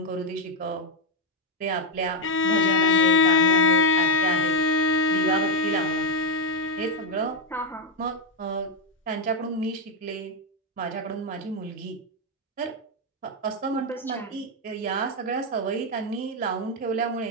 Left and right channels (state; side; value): normal; both; correlation 0.03